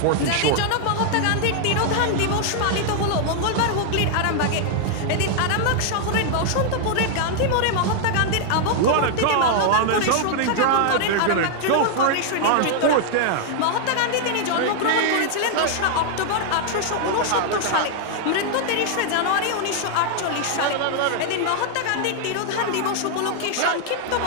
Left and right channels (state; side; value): different; both; correlation 0.00